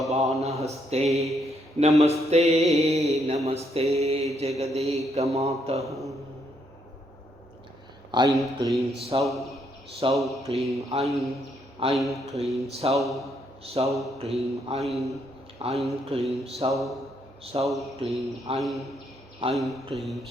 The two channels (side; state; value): both; normal; correlation 0.74